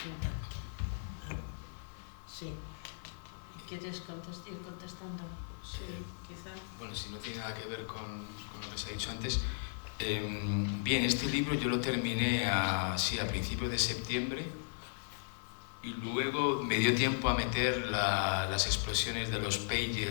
Sí. ¿Quieres ir contestando? Sí, quizá. Bueno, si no tiene nada que ver con lo que se ha dicho antes. Bien, este libro yo lo terminé a principios de septiembre y luego me dio tiempo a meter las explosiones de los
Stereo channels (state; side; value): silent; right; 53 dB below the other